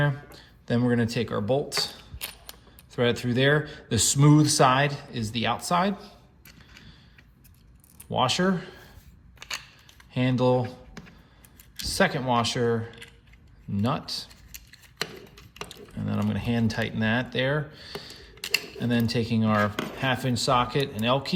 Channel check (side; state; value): both; identical; correlation 1.00